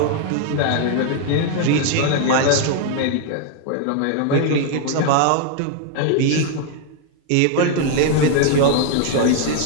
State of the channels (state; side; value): different; both; correlation 0.00